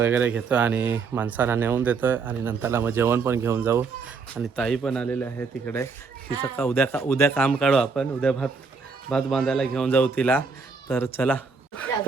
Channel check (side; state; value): left; quieter; 4.9 dB